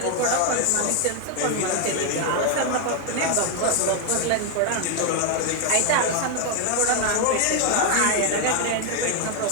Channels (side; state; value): both; different; correlation 0.01